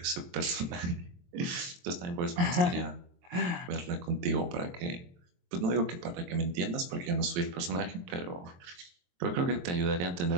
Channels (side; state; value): left; late; 23 ms